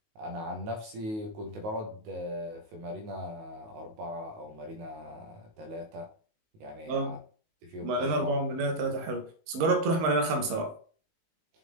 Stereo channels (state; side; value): late; left; 19 ms